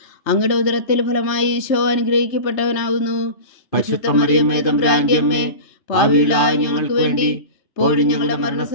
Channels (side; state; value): right; late; 3.3 ms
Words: അങ്ങയുടെ ഉദരത്തിൽ ഫലമായി ഈശോ അനുഗ്രഹിക്കപ്പെട്ടവനാകുന്നു. പരിശുദ്ധ മറിയമേ തമ്പുരാന്റെ അമ്മേ, പാപികളായ ഞങ്ങൾക്ക് വേണ്ടി ഇപ്പോഴും ഞങ്ങളുടെ